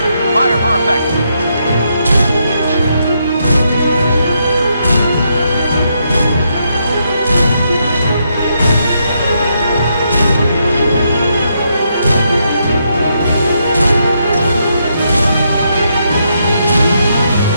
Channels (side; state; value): both; inverted; correlation -0.79